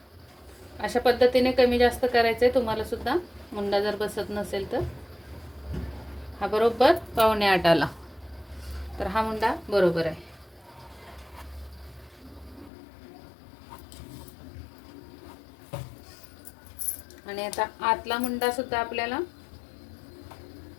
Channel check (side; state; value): right; drops out; at 12.7 s